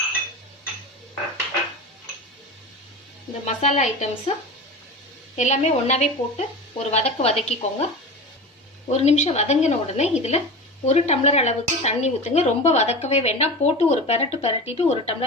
இந்த மசாலா ஐட்டம்ஸ் எல்லாமே ஒன்றாவே போட்டு ஒரு வதக்கிக்கோங்க. ஒரு நிமிஷம் வதங்கின உடனே இதில் 1 டம்ளர் அளவுக்கு தண்ணி ஊற்றுங்க. ரொம்ப வதக்கவே வேண்டாம். போட்டு ஒரு பெரட்டிட்டு 1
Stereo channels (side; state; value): both; normal; correlation 0.29